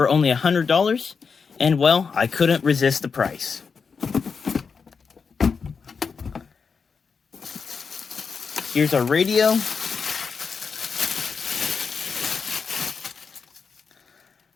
only $100, and well, I couldn't resist the price. Here's our radio.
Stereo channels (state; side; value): quieter; right; 5.5 dB